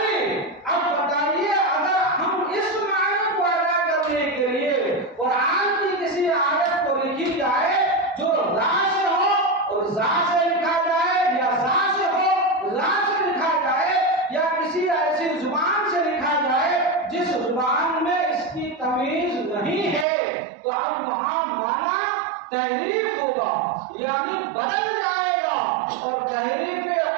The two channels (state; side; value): drops out; left; at 20.1 s